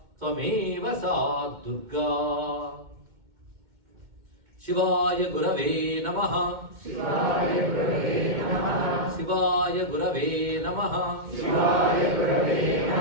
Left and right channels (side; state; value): left; late; 2.2 ms